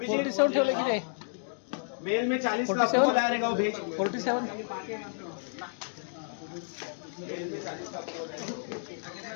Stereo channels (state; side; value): silent; right; digital silence